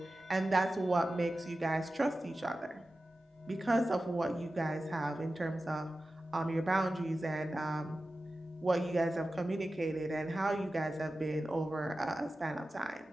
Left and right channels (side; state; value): both; normal; correlation 0.94